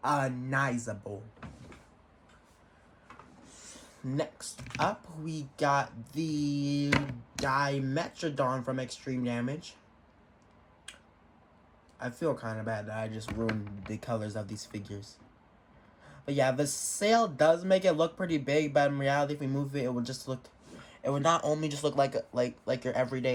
Next up, we got the Dimetrodon from Extreme Damage. I feel kind of bad that I just ruined the colors of these figures. But yeah, the sail does make it look pretty big, but in reality, if we move it, it would not only just look like your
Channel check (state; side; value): identical; both; correlation 1.00